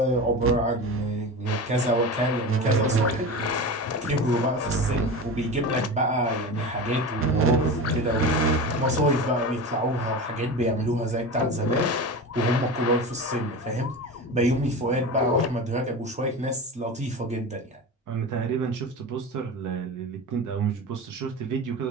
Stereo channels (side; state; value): both; normal; correlation 0.28